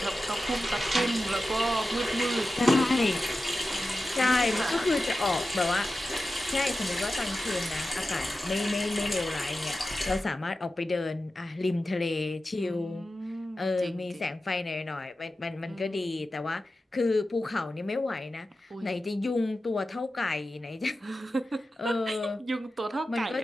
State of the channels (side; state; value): both; normal; correlation 0.93